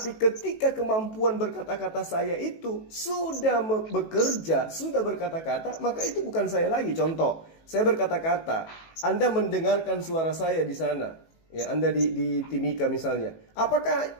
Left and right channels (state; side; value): late; right; 18 ms